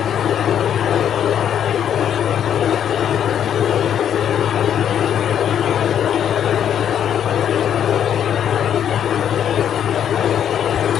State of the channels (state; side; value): quieter; right; 9.3 dB